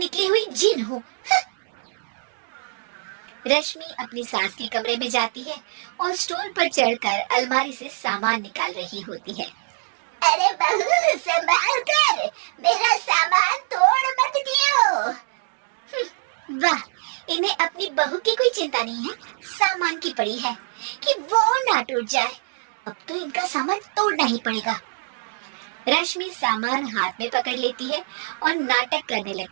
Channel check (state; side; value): silent; left; digital silence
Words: हुई जिन हूँ। रश्मि अपनी सास के कमरे में जाती है और स्टूल पर चढ़कर अलमारी से सामान निकाल रही होती है। अरे बहू, संभाल कर, मेरा सामान तोड़ मत दियो। वाह, इन्हें अपनी बहू की कोई चिंता नहीं है, सामान की पड़ी है कि वो ना टूट जाए। अब तो इनका सामान तोड़ना ही पड़ेगा। रश्मि सामान हाथ में पकड़ लेती है और नाटक करने